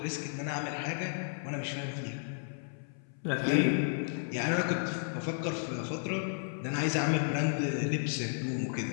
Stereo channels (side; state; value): right; silent; 56 dB below the other